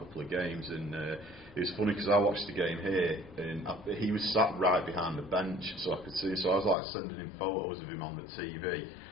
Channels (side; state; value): right; drops out; at 6.8 s